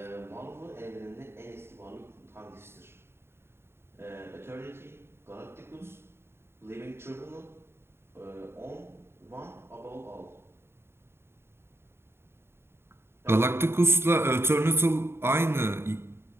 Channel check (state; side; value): late; left; 0.12 ms